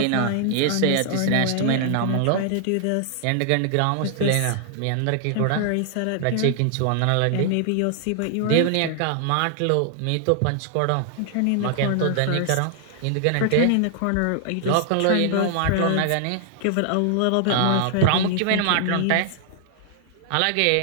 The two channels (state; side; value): different; both; correlation 0.00